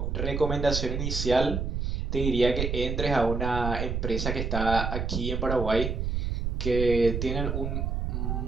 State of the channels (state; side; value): noise; right; rumble, 1 dB below the sound